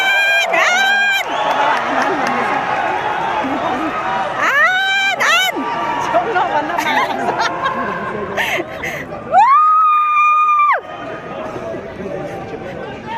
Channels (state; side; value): identical; both; correlation 1.00